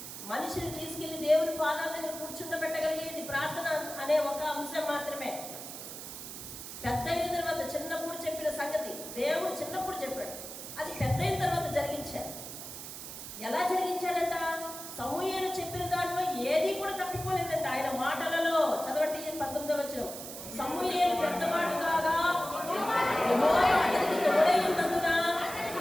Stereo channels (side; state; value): right; noise; hiss, 10 dB below the sound